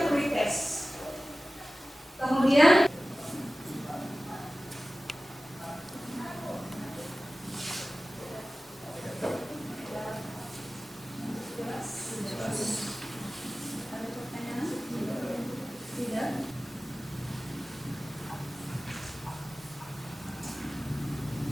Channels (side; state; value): both; normal; correlation 0.97